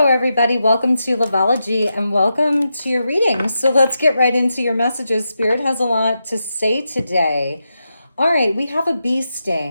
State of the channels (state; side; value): inverted; both; correlation -0.87